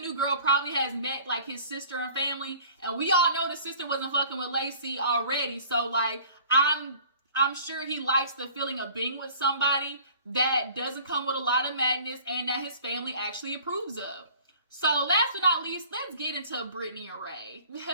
girl probably has met like his sister and family. And we all know the sister wasn't fucking with Lacey already. So like, I'm sure he likes the feeling of being with somebody that doesn't come with a lot of madness and that his family actually approves of. So last but not least, let's get into Brittany and Ray.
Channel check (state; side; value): inverted; both; correlation -0.48